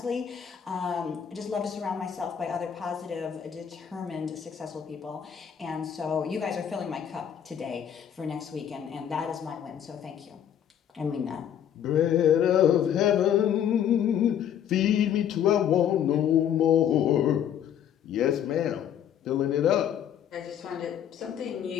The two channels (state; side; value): quieter; right; 9.3 dB